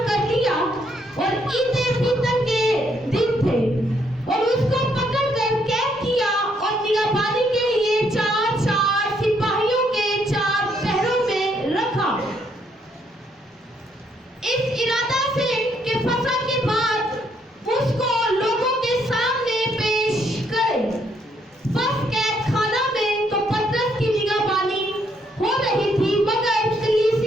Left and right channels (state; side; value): normal; both; correlation 0.72